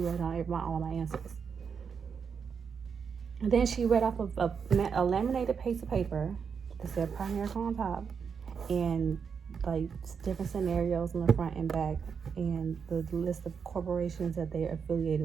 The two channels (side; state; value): left; quieter; 6.4 dB